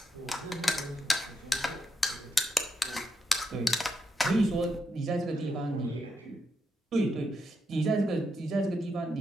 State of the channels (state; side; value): normal; both; correlation 0.82